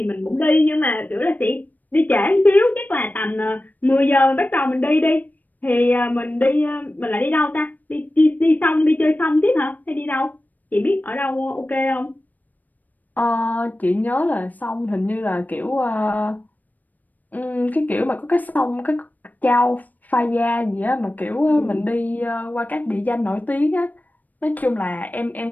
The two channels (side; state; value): right; late; 0.083 ms